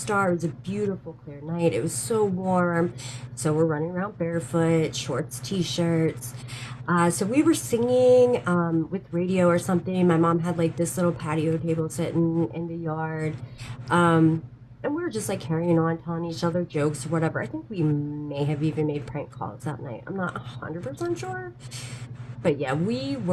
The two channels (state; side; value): identical; both; correlation 1.00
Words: It was a beautiful, clear night. It was so warm. So we're running around barefoot, shorts, t-shirts. So we were singing with radio or something. My mom had like this little patio table sitting in the yard. Um, and we were just like carrying on, telling each other jokes or whatever. I think we may have even made prank calls that night. I'm not 100% sure. But yeah, we